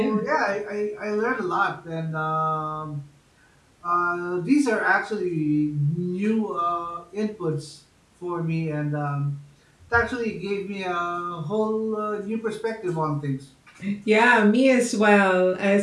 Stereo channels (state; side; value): identical; both; correlation 1.00